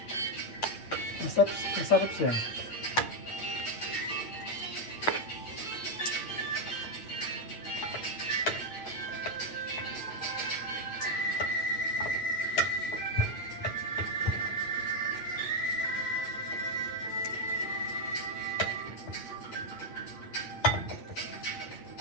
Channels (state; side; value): late; right; 8.9 ms